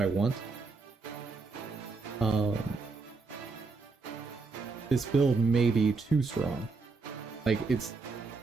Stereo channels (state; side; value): quieter; left; 4.2 dB